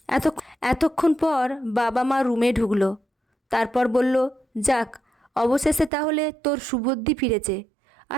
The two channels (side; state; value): left; drops out; at 5.9 s